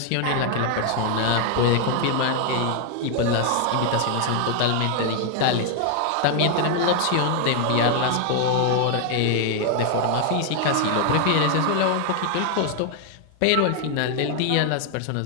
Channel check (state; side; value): different; both; correlation 0.00